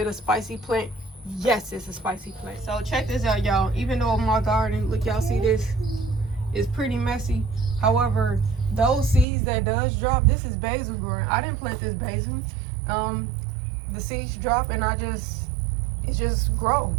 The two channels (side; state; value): left; drops out; at 9.2 s